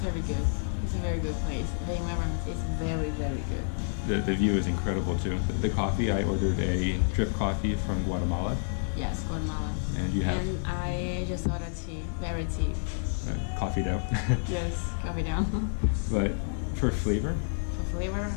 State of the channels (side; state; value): right; silent; digital silence